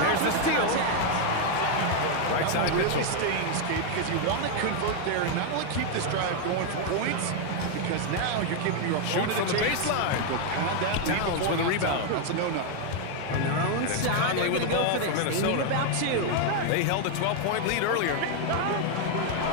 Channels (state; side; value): different; both; correlation 0.01